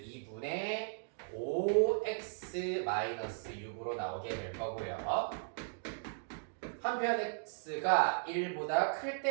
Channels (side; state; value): left; silent; digital silence